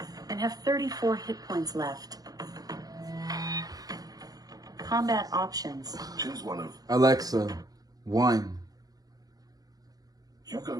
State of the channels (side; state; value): left; late; 0.18 ms